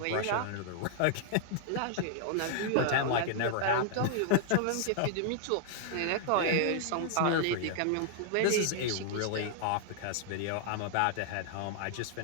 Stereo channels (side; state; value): both; different; correlation -0.01